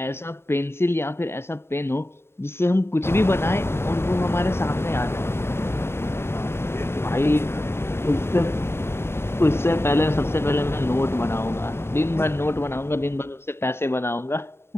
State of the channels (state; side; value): late; right; 0.12 ms